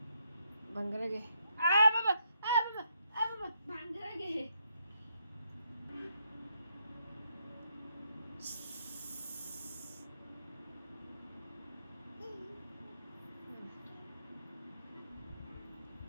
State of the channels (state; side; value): inverted; both; correlation -0.77